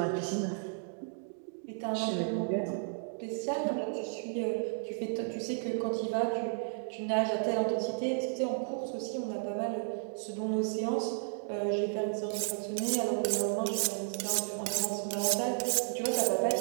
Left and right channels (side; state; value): left; silent; digital silence